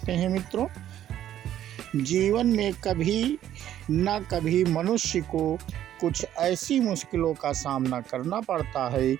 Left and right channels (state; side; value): quieter; left; 11.6 dB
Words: हैं मित्रों। जीवन में कभी न कभी मनुष्य को कुछ ऐसी मुश्किलों का सामना करना पड़ता है